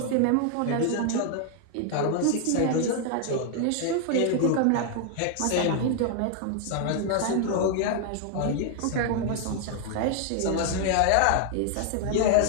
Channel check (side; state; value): both; different; correlation 0.00